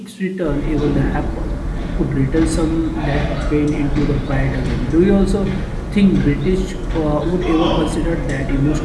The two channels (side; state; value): both; identical; correlation 1.00